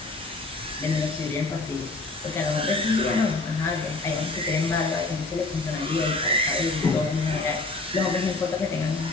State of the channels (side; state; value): right; quieter; 3.4 dB